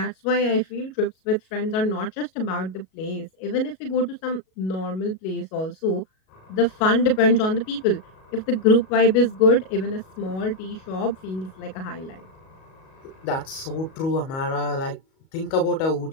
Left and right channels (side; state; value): right; late; 37 ms